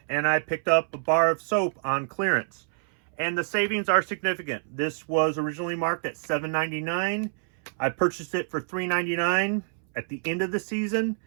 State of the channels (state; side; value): silent; left; 60 dB below the other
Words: and I picked up a bar of soap on clearance. And the savings are significant. This was originally marked at $7.99. I purchased it for $3.99 at the end of the season.